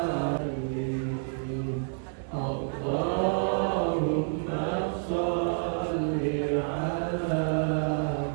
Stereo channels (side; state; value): left; silent; digital silence